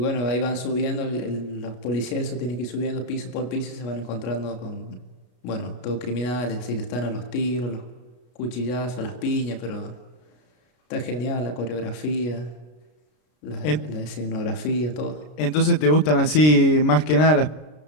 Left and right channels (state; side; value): late; right; 33 ms